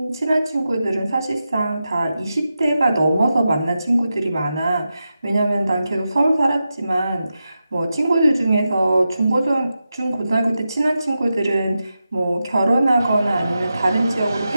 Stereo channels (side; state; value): both; inverted; correlation -0.90